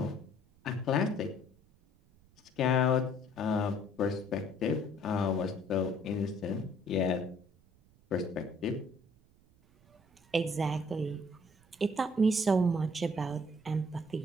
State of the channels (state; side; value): noise; right; rumble, 30 dB below the sound